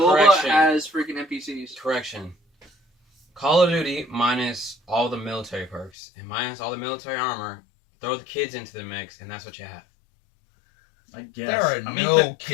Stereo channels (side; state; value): right; drops out; at 5.9 s